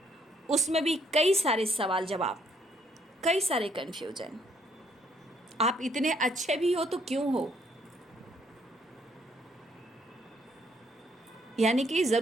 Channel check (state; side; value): normal; both; correlation 0.69